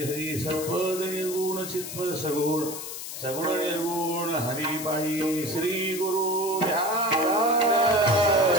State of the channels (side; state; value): left; noise; hiss, 8 dB below the sound